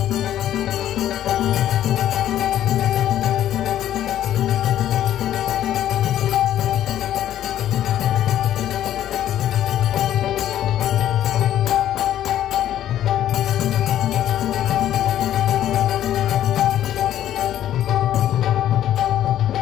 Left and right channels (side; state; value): right; quieter; 11.8 dB